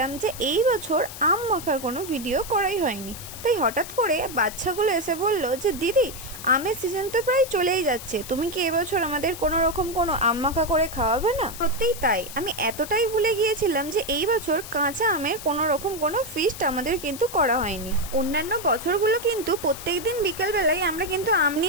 যে এই বছর আম মাখার কোনো ভিডিও করাই হয়নি। তাই হঠাৎ করে বাচ্চাগুলো এসে বলল যে দিদি, আমের সিজন তো প্রায় চলেই যাচ্ছে, তুমি কি এবছর আমাদের কোনো রকম কোনো আম মাখা করে খাওয়াবে না? সত্যিই তাই, আমি এতটাই ভুলে গিয়েছিলাম যে এই বছর কাঁচা আমের কোনো রকম কোনো ফিস্ট আমাদের কিন্তু করা হয়নি। অন্যান্য বছরগুলো কিন্তু প্রত্যেক দিন বিকেলবেলায় আমরা কিন্তু আম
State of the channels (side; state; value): left; noise; hiss, 12 dB below the sound